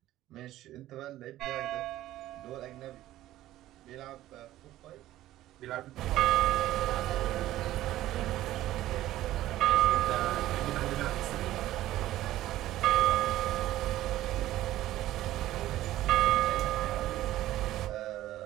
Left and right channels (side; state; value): left; quieter; 14.6 dB